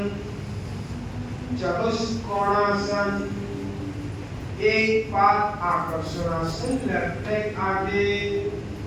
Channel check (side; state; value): both; identical; correlation 1.00